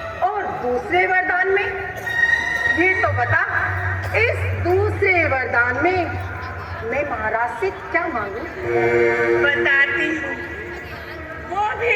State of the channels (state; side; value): identical; both; correlation 1.00